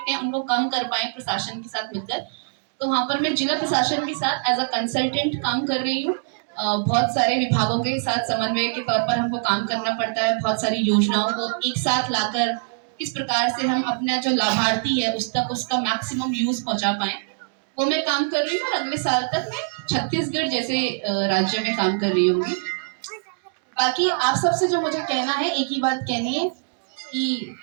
हैं उनको कम कर पाए प्रशासन के साथ मिलकर। तो वहाँ पर मैं जिला प्रशासन के साथ एज अ कंसल्टेंट काम कर रही हूँ। बहुत सारे विभागों के साथ समन्वय के तौर पर हमको काम करना पड़ता है। बहुत सारी योजनाओं को एक साथ लाकर किस प्रकार से हम अपना जो लाभार्थी है उस तक उसका मैक्सिमम यूज पहुंचा पाए, वो मैं काम कर रही हूँ। और अगले साल तक मैं छत्तीसगढ़ जैसे राज्य में काम कर रही होंगी। बाकी आप सबसे जो मुझे कहना है, एक ही बात कहनी है कि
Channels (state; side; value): silent; left; digital silence